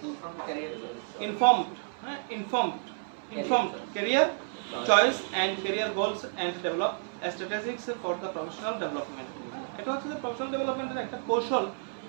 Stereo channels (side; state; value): left; silent; 57 dB below the other